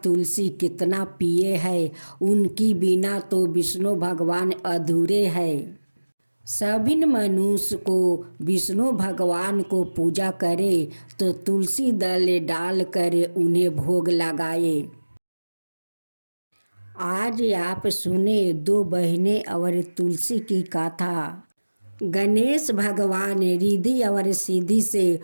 तुलसी कितना प्रिय है, उनकी बिना तो विष्णु भगवान अधूरे हैं। सभी मनुष्य को विष्णु भगवान को पूजा करे तो तुलसी दल डाल कर उन्हें भोग लगाए। आज आप सुने दो बहनें और तुलसी की कथा। गणेश भगवान रिद्धि और सिद्धि से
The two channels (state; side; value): inverted; both; correlation -1.00